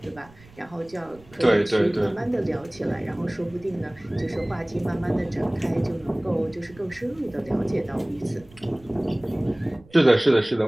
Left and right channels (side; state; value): right; noise; rumble, 25 dB below the sound